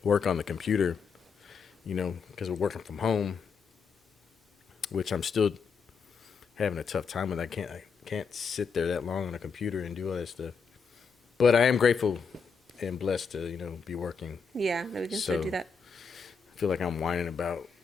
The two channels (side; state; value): right; quieter; 5.5 dB